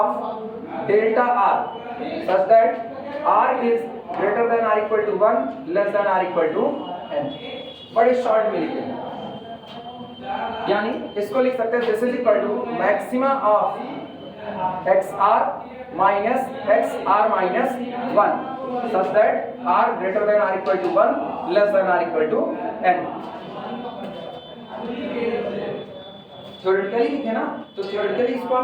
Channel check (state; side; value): identical; both; correlation 1.00